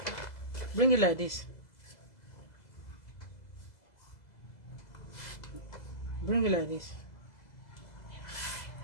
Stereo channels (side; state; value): right; late; 2.0 ms